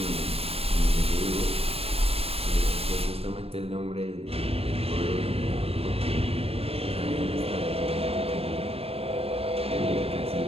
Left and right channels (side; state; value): left; late; 0.29 ms